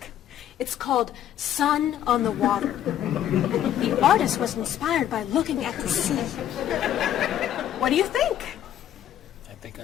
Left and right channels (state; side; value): quieter; right; 11.1 dB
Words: It's called Sun on the Water. The artist was inspired by looking at the sea. What do you think? I think